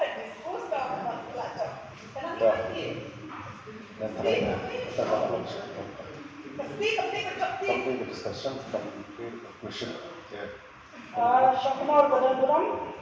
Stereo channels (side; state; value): both; identical; correlation 1.00